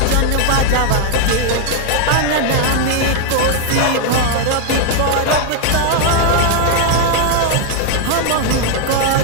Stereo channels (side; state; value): both; different; correlation 0.00